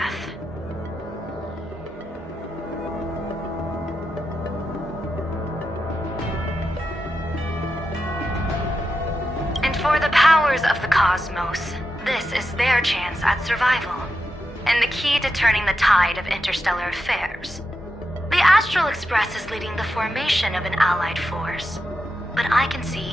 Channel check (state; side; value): normal; both; correlation 0.87